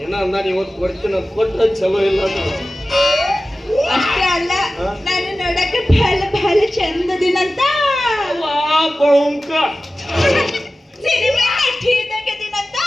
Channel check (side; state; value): both; normal; correlation 0.95